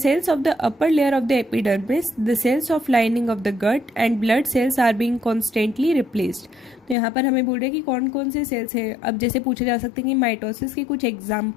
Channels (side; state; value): right; drops out; at 7.0 s